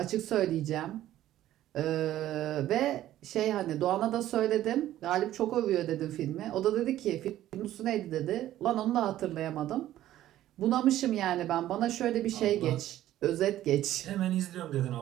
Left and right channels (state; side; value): quieter; left; 13.4 dB